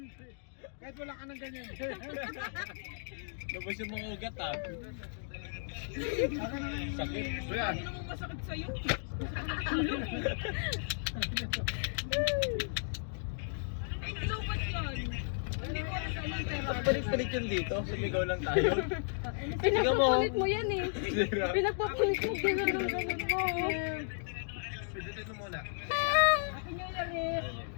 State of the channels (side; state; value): right; silent; digital silence